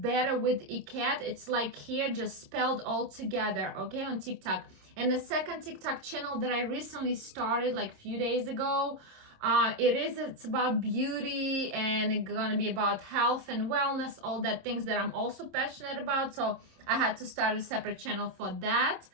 with ECAT. It's like here, just spelled all together, okay, on TikTok. And the second TikTok channel that I recently started like a few days ago, it's about beauty, and it's gonna be about health and wellness, all that things that I'm also passionate about. So I had to start a separate channel for that.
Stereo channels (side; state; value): left; late; 26 ms